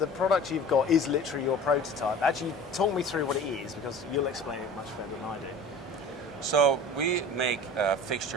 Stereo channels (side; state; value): both; normal; correlation 0.41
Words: product you've got is literally your prototype. Actually, talk me through what it is, because you'll explain it much better than I do. So we make